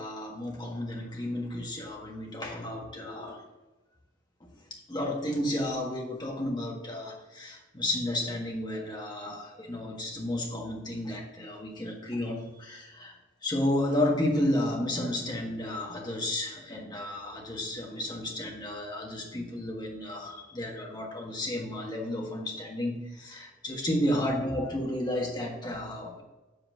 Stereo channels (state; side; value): normal; both; correlation 0.62